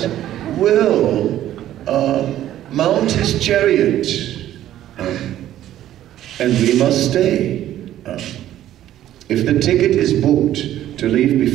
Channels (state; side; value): quieter; left; 12.6 dB